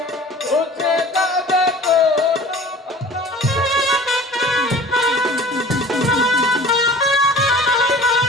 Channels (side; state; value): both; normal; correlation 0.43